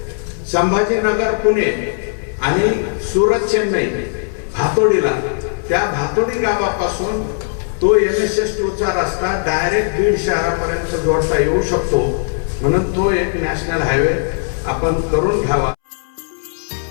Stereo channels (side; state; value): right; silent; 68 dB below the other